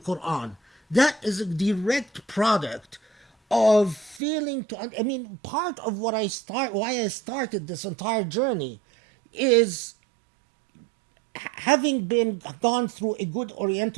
That is a direct product of failing to... I mean, part of why I started this entire journey is having gone through a good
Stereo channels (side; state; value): left; drops out; at 4.2 s